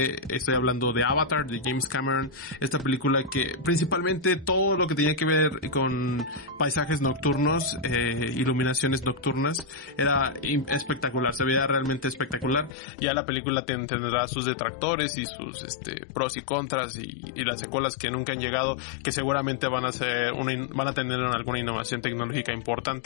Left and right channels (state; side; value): drops out; right; at 12.8 s